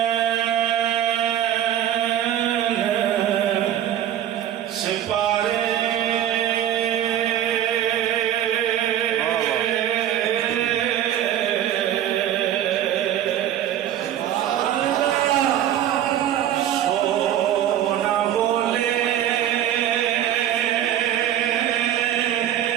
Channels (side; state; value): left; quieter; 11.1 dB